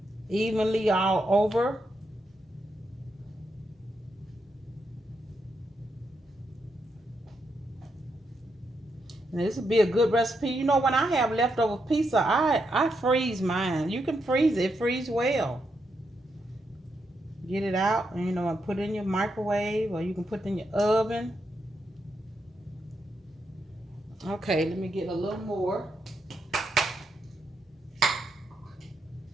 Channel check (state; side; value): normal; both; correlation 0.82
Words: evenly all over. And this would be a good recipe. You know, when I have leftover pizza, I freeze mine. You can freeze it. It freeze well. Get it out and, you know, and put it in your microwave, or you can put it in your oven. Okay, let me get a little more.